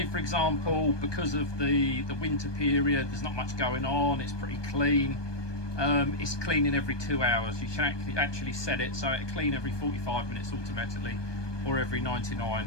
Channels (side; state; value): right; late; 1.2 ms